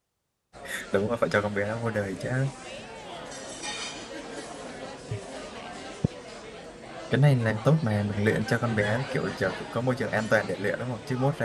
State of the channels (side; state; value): both; identical; correlation 1.00